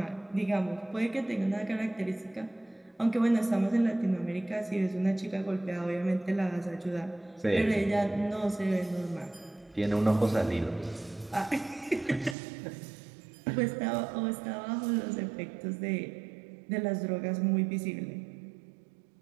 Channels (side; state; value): left; drops out; at 12.4 s